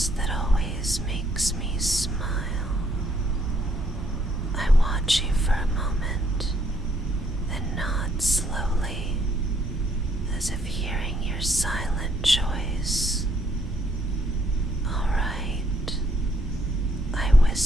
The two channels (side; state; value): both; normal; correlation 0.70